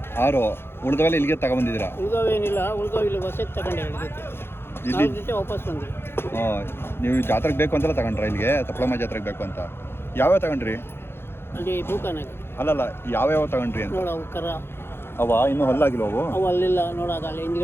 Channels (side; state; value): right; late; 0.11 ms